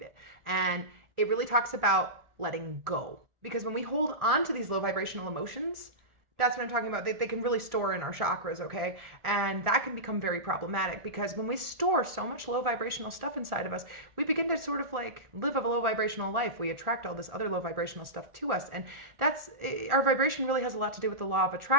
it. And it really talks about letting go. Because when we hold on to these low vibrational emotions, that's what I'm talking about. They can really store in our chakras, okay? And that can become very problematic because when we store so much low vibrational stuff inside of us, we begin to sort of live a low vibrational life. We attract all this other low vibrational stuff to us. And our vibration really has a lot to do with the law of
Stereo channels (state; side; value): late; left; 1.4 ms